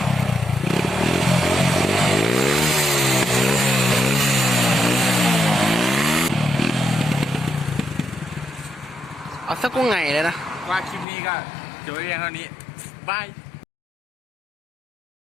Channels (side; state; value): right; drops out; at 11.1 s